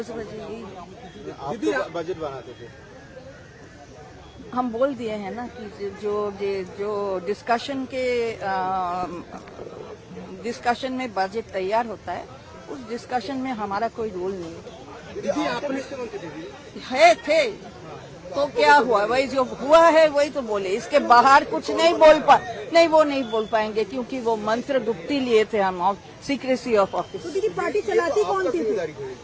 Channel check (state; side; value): identical; both; correlation 1.00